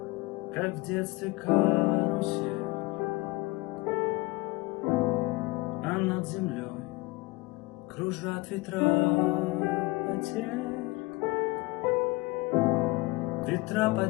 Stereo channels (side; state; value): right; quieter; 21.9 dB